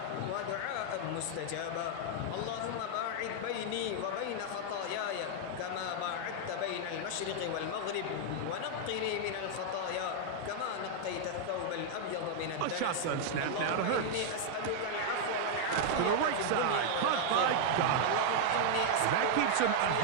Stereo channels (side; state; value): both; different; correlation 0.00